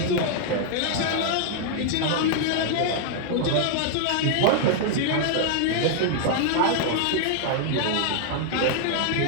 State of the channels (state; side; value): different; both; correlation 0.00